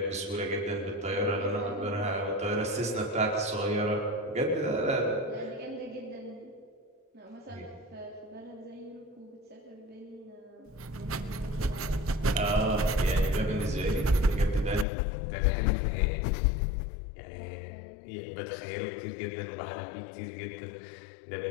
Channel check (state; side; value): drops out; right; at 14.9 s